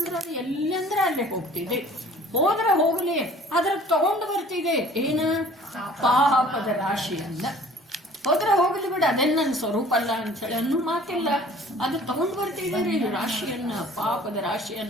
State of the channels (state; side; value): normal; both; correlation 0.50